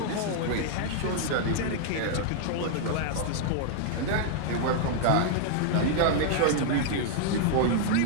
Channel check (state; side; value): different; both; correlation 0.00